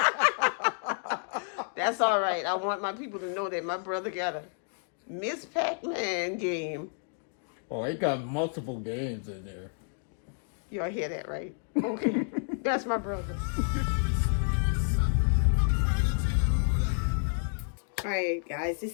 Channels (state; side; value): silent; right; 58 dB below the other